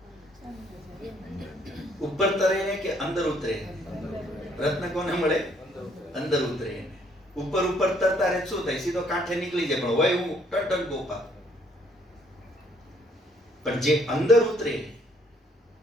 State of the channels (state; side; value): normal; both; correlation 0.66